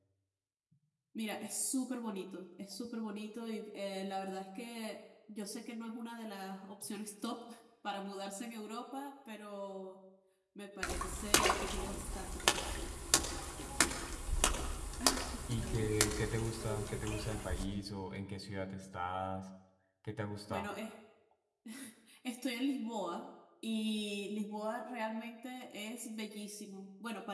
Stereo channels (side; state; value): both; identical; correlation 1.00